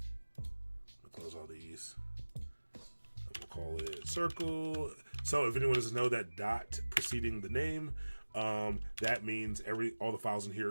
I'll close all these. We'll call it circle. So if anyone doesn't know that dot preceding the name, that means all the files in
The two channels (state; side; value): inverted; both; correlation -1.00